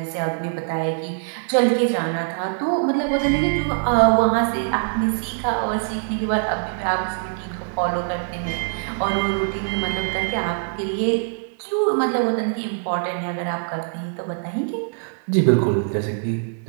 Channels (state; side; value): silent; left; 64 dB below the other